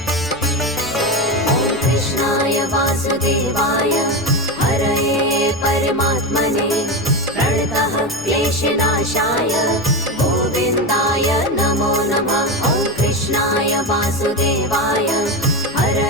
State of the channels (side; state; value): left; noise; rumble, 23 dB below the sound